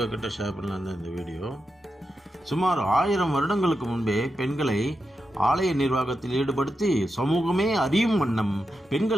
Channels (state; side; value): normal; both; correlation 0.88